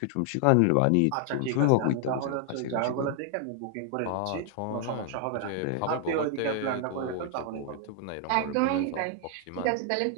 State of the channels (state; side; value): different; both; correlation 0.00